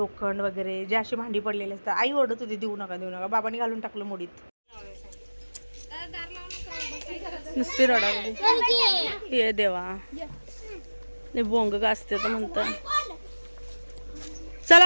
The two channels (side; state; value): both; inverted; correlation -1.00